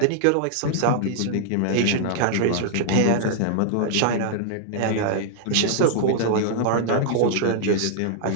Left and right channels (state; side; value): different; both; correlation -0.01